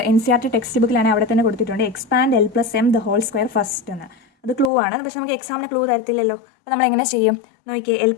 NCERT ടെക്സ്റ്റ് ബുക്കിലാണെങ്കിൽ അവിടെ തന്നെ കൊടുത്തിട്ടുണ്ട് expand l plus M the whole square first എന്ന്. അത് ക്ലൂ ആണ്, പക്ഷെ നമുക്ക് എക്സാമിന് ക്ലൂ തരത്തില്ലല്ലോ. അപ്പോൾ നമ്മൾ എങ്ങനെ ചെയ്യും നോക്കിയേ? L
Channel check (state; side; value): drops out; right; at 4.7 s